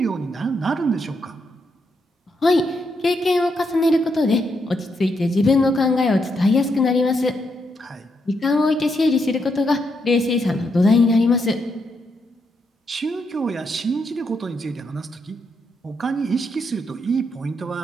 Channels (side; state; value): both; normal; correlation 0.80